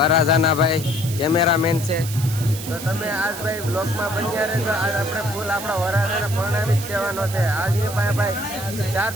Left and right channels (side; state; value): right; noise; hiss, 10 dB below the sound